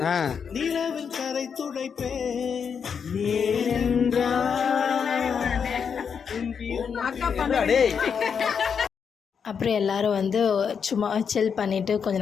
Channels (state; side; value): quieter; right; 6.7 dB